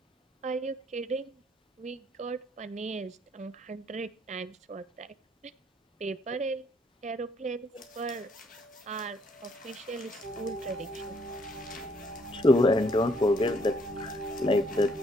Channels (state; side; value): normal; both; correlation 0.67